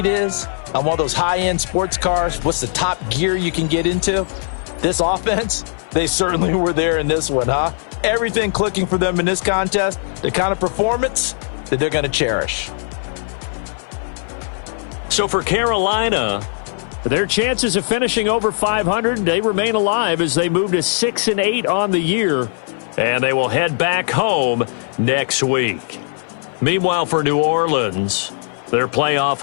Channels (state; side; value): silent; right; 55 dB below the other